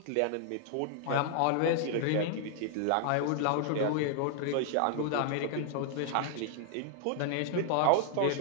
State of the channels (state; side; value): different; both; correlation 0.00